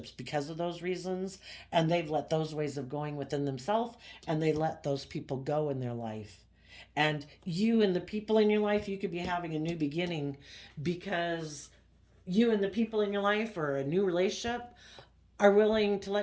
because of those reasons, and they've let those ways of going within themselves, and they let those people go in their life. And you and the people in your life, you could be having a new beginning because you and the people in your life, or a new relationship, are willing to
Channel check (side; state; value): both; identical; correlation 1.00